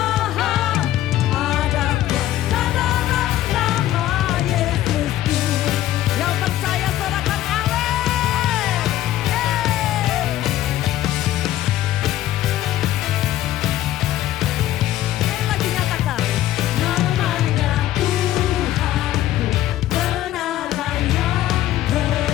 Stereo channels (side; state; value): right; quieter; 13.6 dB